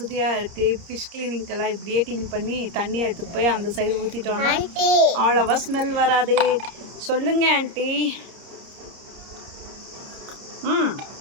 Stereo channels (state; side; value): late; left; 30 ms